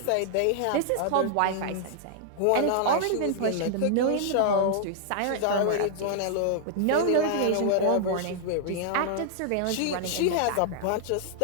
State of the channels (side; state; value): both; different; correlation -0.01